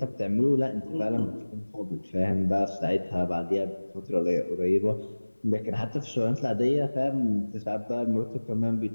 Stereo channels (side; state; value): both; inverted; correlation -1.00